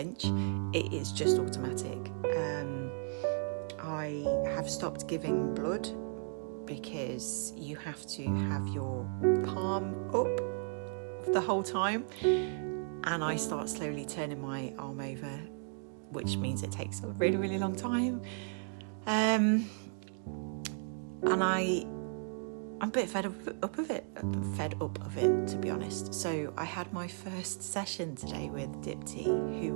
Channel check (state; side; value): silent; left; 54 dB below the other